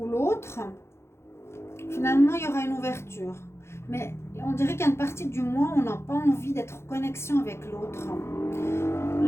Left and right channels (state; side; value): late; right; 0.13 ms